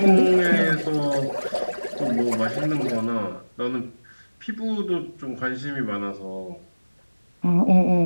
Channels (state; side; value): inverted; both; correlation -1.00